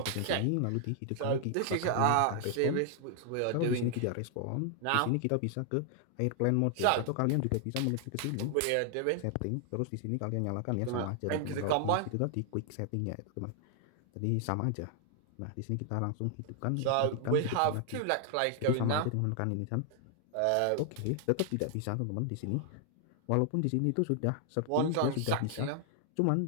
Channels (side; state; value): both; different; correlation 0.00